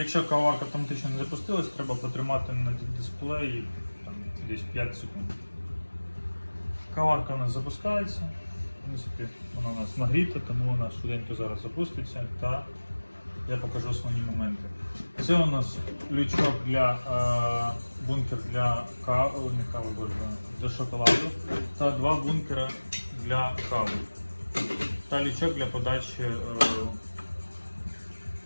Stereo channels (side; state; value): both; inverted; correlation -1.00